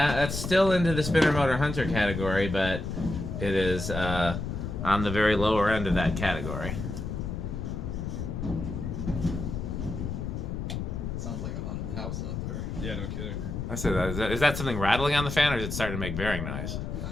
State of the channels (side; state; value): left; noise; rumble, 4 dB below the sound